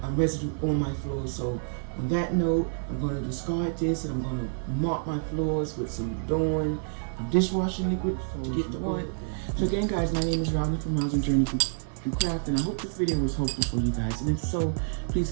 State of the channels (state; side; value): silent; left; 59 dB below the other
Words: residue on my floors. So on that note, I'm going to discard this, and I'm going to mop my floors with some Dawn dishwashing liquid to get the oil. So again, guys, my name is Robin from Rosin Journey through Craft, and I hope this video was helpful for you guys. And if so, please